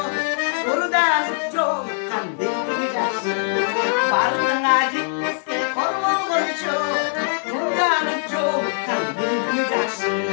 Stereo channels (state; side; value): silent; right; digital silence